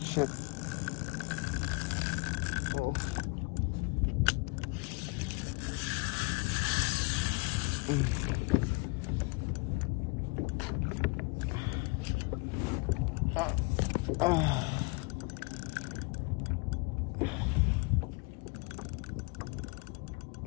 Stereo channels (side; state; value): right; quieter; 29.7 dB